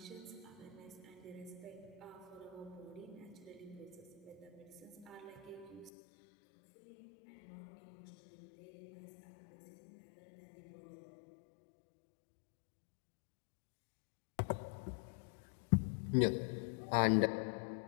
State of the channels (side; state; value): right; drops out; at 5.9 s